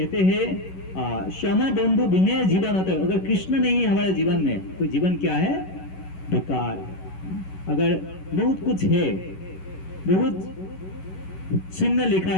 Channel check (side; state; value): right; late; 11 ms